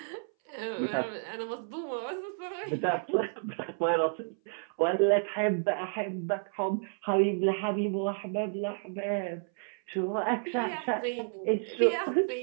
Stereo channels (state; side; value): silent; left; 57 dB below the other